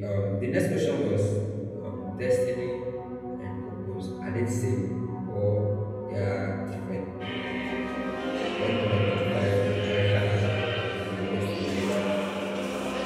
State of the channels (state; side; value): identical; both; correlation 1.00